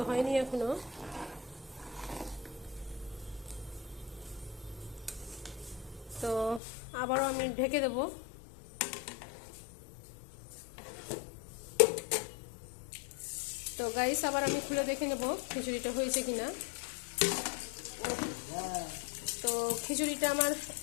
হয়নি এখনো। তো আবারও আমি ঢেকে দেব। তো গাইস, আবার আমি খুলে দেখে নেব খিচুড়িটা হয়েছে কিনা। তো খিচুড়িটা আমার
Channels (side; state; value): right; drops out; at 6.6 s